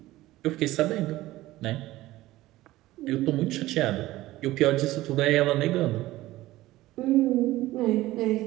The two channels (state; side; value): quieter; left; 16.9 dB